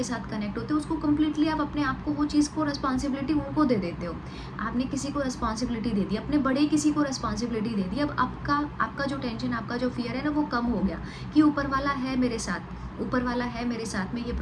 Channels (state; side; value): identical; both; correlation 1.00